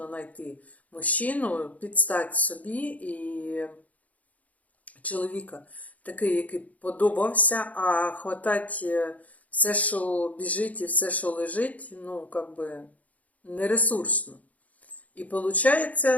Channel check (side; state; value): right; late; 0.072 ms